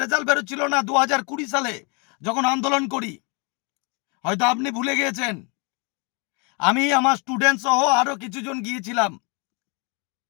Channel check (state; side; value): quieter; right; 32.5 dB